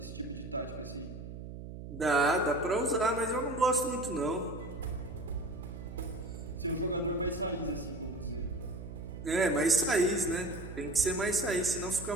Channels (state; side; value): noise; right; hum, 10 dB below the sound